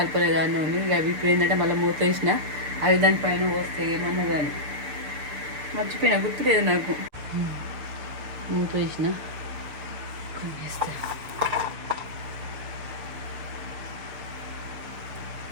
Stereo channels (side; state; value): left; late; 6.7 ms